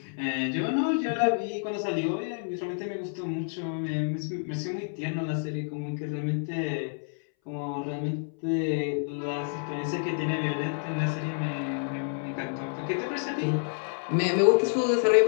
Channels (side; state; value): right; silent; 59 dB below the other